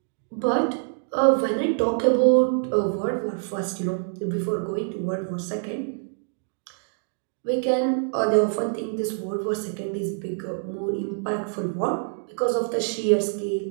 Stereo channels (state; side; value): silent; left; digital silence